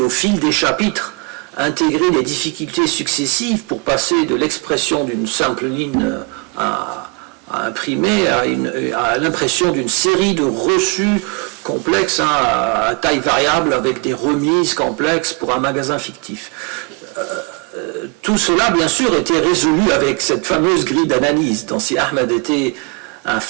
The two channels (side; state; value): left; quieter; 30.6 dB